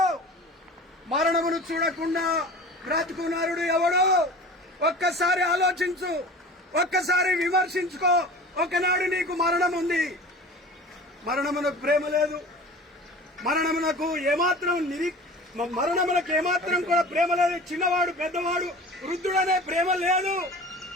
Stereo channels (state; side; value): normal; both; correlation 0.39